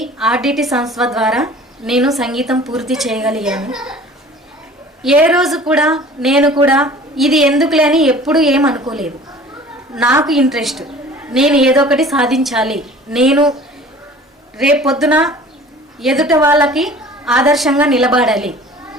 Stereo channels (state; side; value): normal; both; correlation 0.46